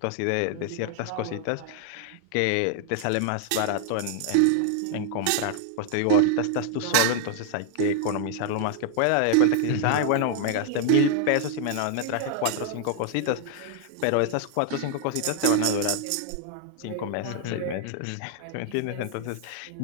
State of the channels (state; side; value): different; both; correlation 0.00